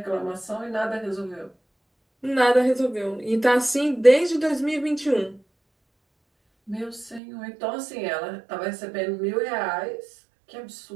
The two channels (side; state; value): left; drops out; at 7.2 s